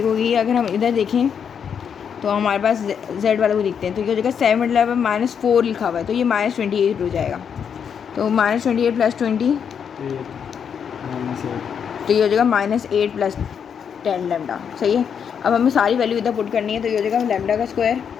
हो गई। अगर हम इधर देखें तो हमारे पास z वाले को दिखते हैं, तो ये हो जाएगा 7 मतलब -4 लिखा हुआ है, तो ये -28 हो जाएगा। तो -28 + 20 तो ये हो जाएगा -8 + 10 लैम्डा सही है। अब हमें सारी वैल्यू इधर पुट करनी है, तो ये हो जाएगा लैम्डा का स्क्वायर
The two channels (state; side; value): quieter; right; 7.4 dB